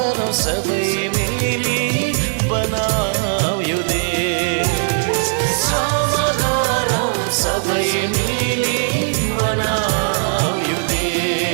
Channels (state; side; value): silent; left; digital silence